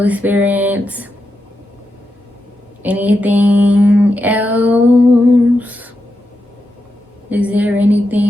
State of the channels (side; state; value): both; normal; correlation 0.87